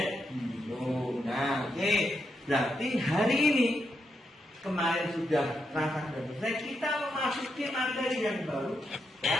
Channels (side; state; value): both; normal; correlation 0.82